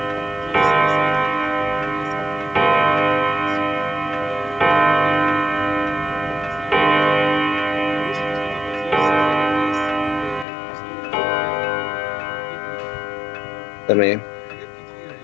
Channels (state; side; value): drops out; right; at 10.5 s